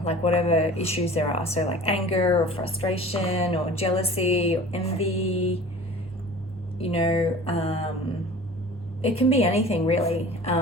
issues there are. So like anger or frustration or jealousy or envy, you know, it can be anything really.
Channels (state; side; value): normal; both; correlation 0.42